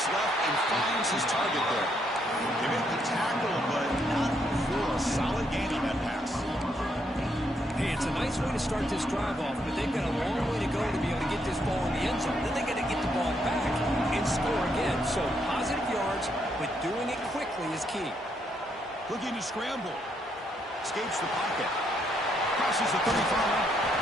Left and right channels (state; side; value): normal; both; correlation 0.75